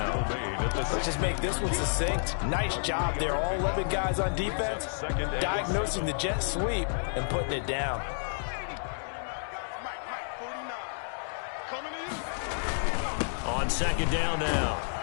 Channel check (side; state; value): right; silent; digital silence